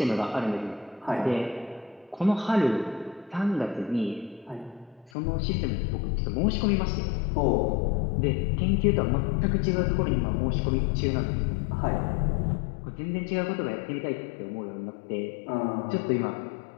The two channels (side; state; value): right; drops out; at 5.1 s